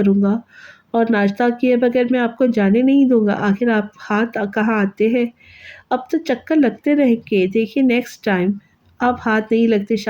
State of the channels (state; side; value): identical; both; correlation 1.00